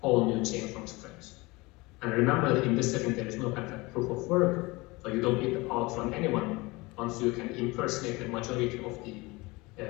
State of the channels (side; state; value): right; quieter; 23.5 dB